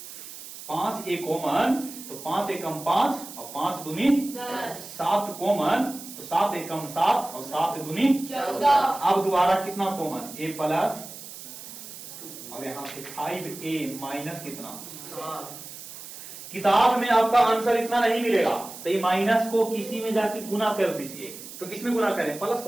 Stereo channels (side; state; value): right; noise; hiss, 13 dB below the sound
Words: 5a कॉमन तो 5 एकम 5 और 5 दूनी 7 कॉमन तो 7 एकम 7 और 7 दूनी 14। अब दोबारा कितना कॉमन, a प्लस और यहाँ पे 5a माइनस कितना, किताब में आपका आंसर इतना नहीं मिलेगा, तो ये माइनस को किसी में जाके गुना कर दीजिए। तो किसमें गुना करें, प्लस